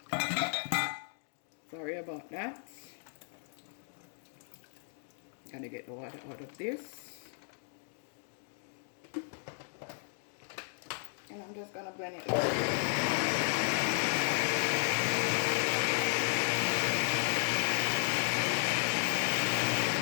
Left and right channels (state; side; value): silent; right; 55 dB below the other